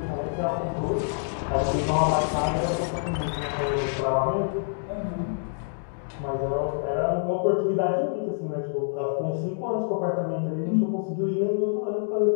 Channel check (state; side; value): silent; right; digital silence